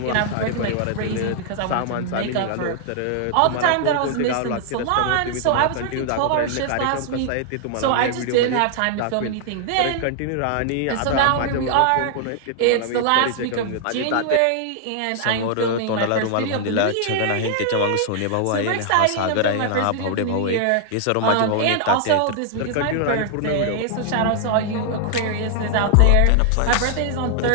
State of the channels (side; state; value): both; different; correlation -0.01